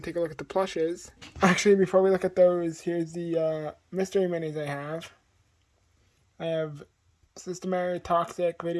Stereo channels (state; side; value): identical; both; correlation 1.00